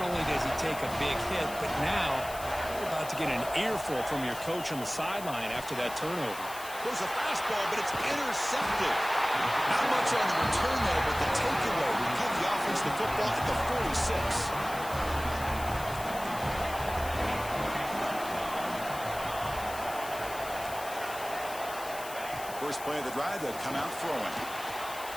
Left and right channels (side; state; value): left; noise; hiss, 13 dB below the sound